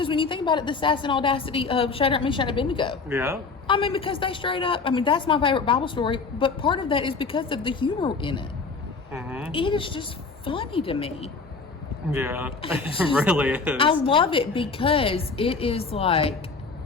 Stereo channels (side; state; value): right; quieter; 4.5 dB